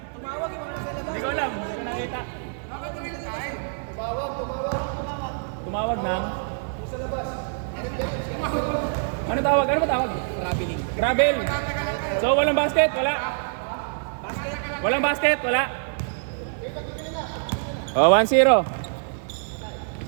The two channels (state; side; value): silent; left; digital silence